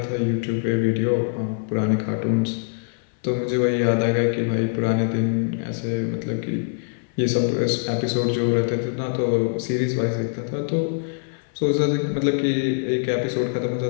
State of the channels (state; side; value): silent; right; 59 dB below the other